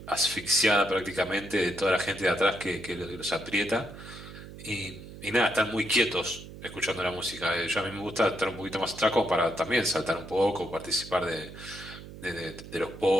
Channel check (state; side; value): noise; right; hum, 14 dB below the sound